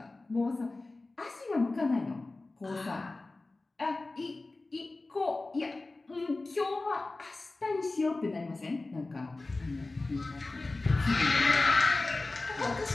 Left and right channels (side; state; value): right; quieter; 3.2 dB